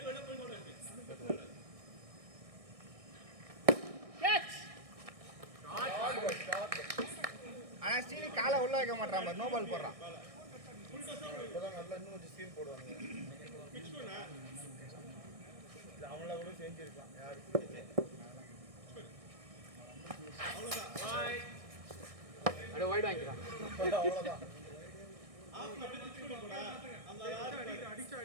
ஆனா ஸ்டீலி காலை உள்ள வைக்க மாட்டான் நோ பால் போடுறான் இப்பதான் நல்லா இன்னும் கொஞ்சம் சீன் போடுவாங்க. இது அவங்கள கூட செஞ்சிருக்கலாம் யாருக்கு அட வைட் வாங்கிக்கலாம். அவ்வளவுதான்.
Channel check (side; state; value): left; late; 1.6 ms